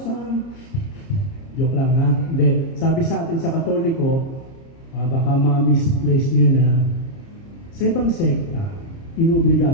Joke lang ha. Hindi. Sabi sa atin sa Katoliko, baka ma-misplace nyo na, sa ibang sekta, inuobliga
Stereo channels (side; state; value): right; late; 30 ms